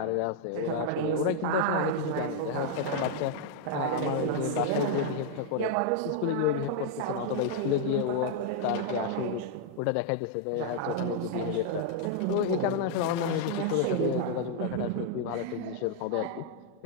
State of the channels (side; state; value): both; different; correlation -0.01